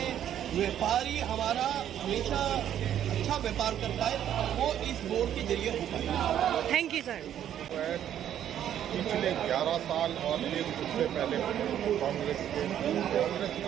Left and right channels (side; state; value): left; quieter; 10.5 dB